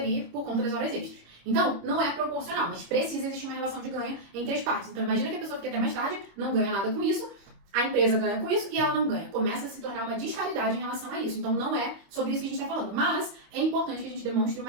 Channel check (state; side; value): late; left; 25 ms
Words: por conta das horas extras. Então, não é proporcional, mas precisa existir uma relação de ganho entre as partes. Então, imagina que a pessoa fica até mais tarde, não ganha nada com isso, a empresa ganha com isso e ela não ganha. Começa a se tornar uma disparidade em relação a isso. Então, não é sobre isso que a gente está falando. Mas é importante que a gente demonstre